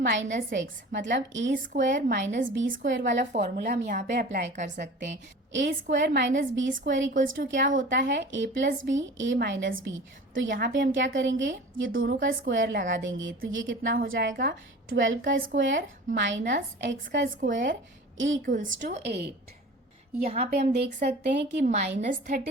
एक्स मतलब a square minus b square वाला फॉर्मूला हम यहाँ पे अप्लाई कर सकते हैं। A square minus b square equals to क्या होता है, a plus b a minus b. तो यहाँ पे हम क्या करेंगे, ये दोनों का स्क्वायर लगा देंगे तो ये कितना हो जाएगा, 12 का स्क्वायर माइनस एक्स का स्क्वायर इक्वल्स टू 8। यहाँ पे हम देख सकते हैं कि माइनस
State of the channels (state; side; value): normal; both; correlation 0.40